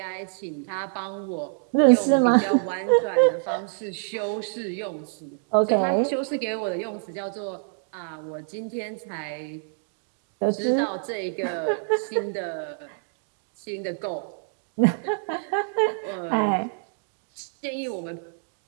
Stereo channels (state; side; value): silent; left; digital silence